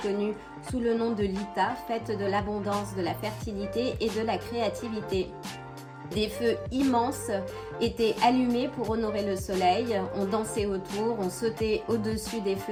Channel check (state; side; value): identical; both; correlation 1.00